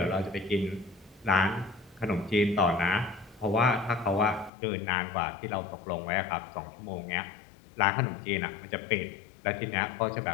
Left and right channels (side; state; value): right; drops out; at 4.5 s